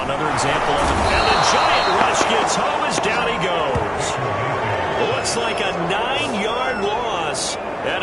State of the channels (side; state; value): both; identical; correlation 1.00